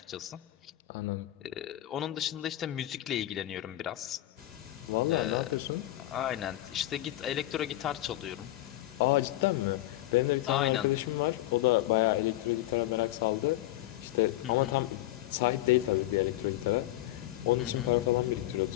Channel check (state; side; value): quieter; right; 15.7 dB